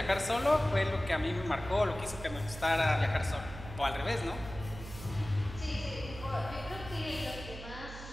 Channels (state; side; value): noise; right; hum, 12 dB below the sound